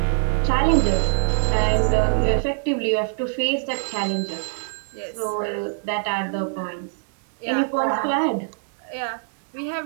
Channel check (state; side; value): silent; left; digital silence